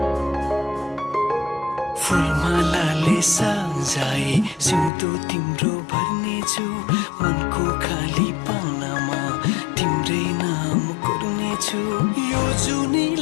फुलमालाले सजाए सिउँदो तिम्रो भर्नेछु मनको खाली पानामा तिम्रै नाम कोर्नेछु यो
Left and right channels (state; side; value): drops out; right; at 4.9 s